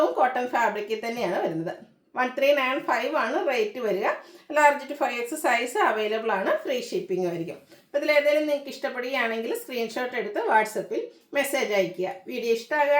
കോട്ടൺ ഫാബ്രിക്കിൽ തന്നെയാണ് വരുന്നത്. 1395 ആണ് റേറ്റ് വരിക. Large to 5X size available ആണ്. ഫ്രീ ഷിപ്പിംഗ് ആയിരിക്കും. അപ്പോൾ ഇതിലേതെങ്കിലും നിങ്ങൾക്ക് ഇഷ്ടപ്പെടുകയാണെങ്കിൽ സ്ക്രീൻഷോട്ട് എടുത്ത് വാട്സപ്പിൽ മെസ്സേജ് അയയ്ക്കുക. വീഡിയോ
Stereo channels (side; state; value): both; identical; correlation 1.00